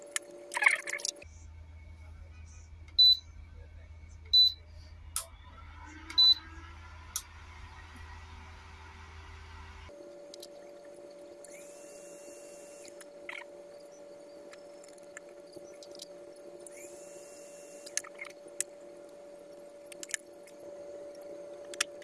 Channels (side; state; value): both; identical; correlation 1.00